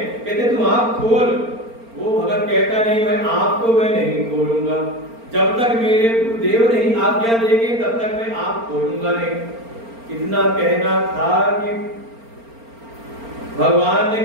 कहते तुम आंख खोल। वो भगत कहता नहीं, मैं आंख को मैं नहीं खोलूंगा, जब तक मेरे गुरुदेव नहीं आज्ञा देंगे तब तक मैं आंख खोलूंगा नहीं। इतना कहना था कि भगवान ने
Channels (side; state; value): left; late; 4.4 ms